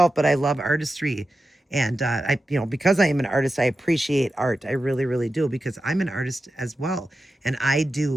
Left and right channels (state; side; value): normal; both; correlation 0.91